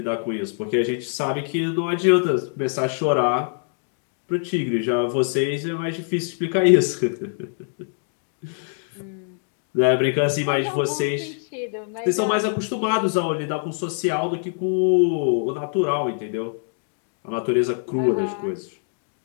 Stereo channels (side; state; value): right; silent; digital silence